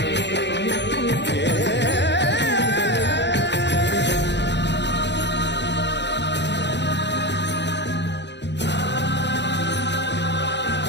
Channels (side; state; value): right; late; 0.51 ms